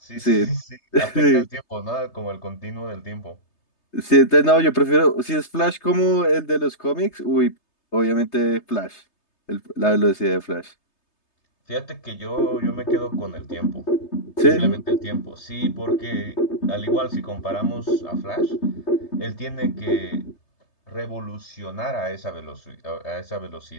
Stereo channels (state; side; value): late; right; 3.3 ms